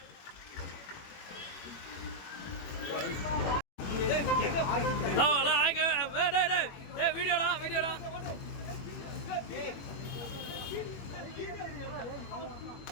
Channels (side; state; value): right; late; 21 ms